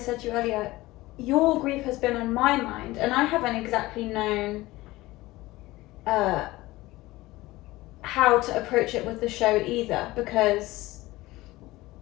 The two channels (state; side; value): quieter; right; 18.9 dB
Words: to you earlier, your grief has been on my mind, and I haven't exactly known how to approach it with the show either, because,